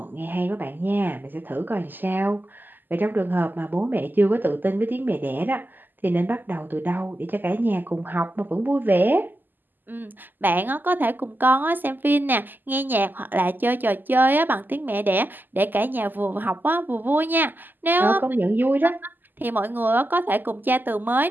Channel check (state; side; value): late; left; 0.089 ms